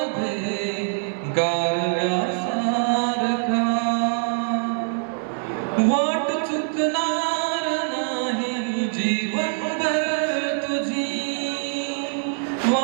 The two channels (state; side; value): silent; left; 63 dB below the other